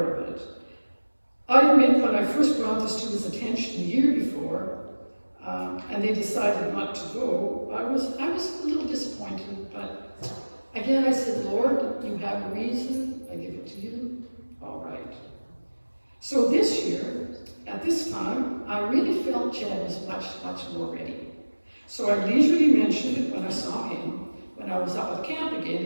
of it. I admit when I first brought this to his attention the year before, and they decided not to go, I was a little disappointed, but again I said, Lord, you have a reason, I give it to you, all right. So this year, at this time, I really felt Chad was much, much more ready. So I leisurely mentioned it when I saw him, when I was out at camp again.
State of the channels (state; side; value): inverted; both; correlation -1.00